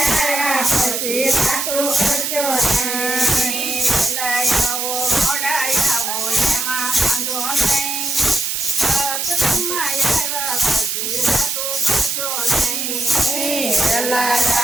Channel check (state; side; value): noise; right; hiss, 2 dB below the sound